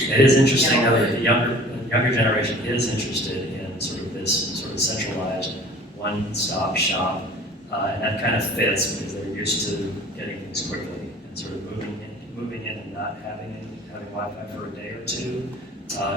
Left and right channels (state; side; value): normal; both; correlation 0.46